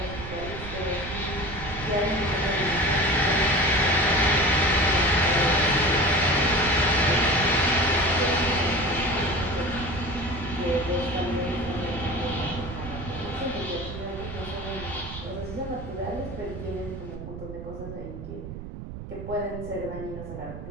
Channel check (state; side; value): noise; right; rumble, 10 dB below the sound